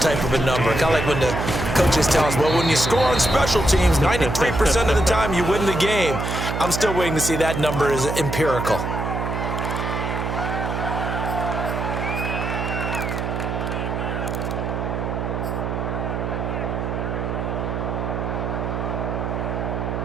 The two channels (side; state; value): right; noise; hum, 2 dB below the sound